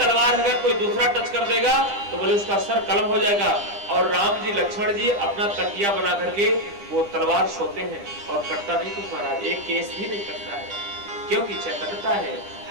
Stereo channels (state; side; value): late; left; 9.9 ms